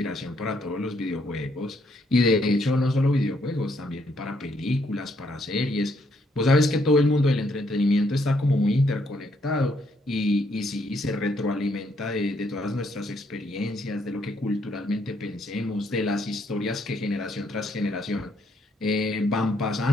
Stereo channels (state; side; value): normal; both; correlation 0.72